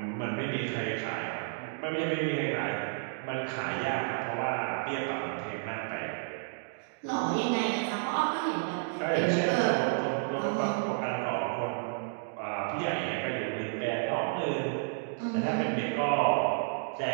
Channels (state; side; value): silent; left; digital silence